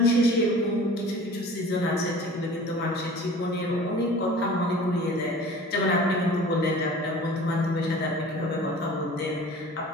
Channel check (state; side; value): normal; both; correlation 0.44